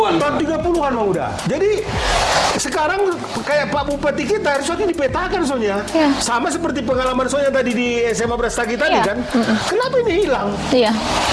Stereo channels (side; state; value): both; identical; correlation 1.00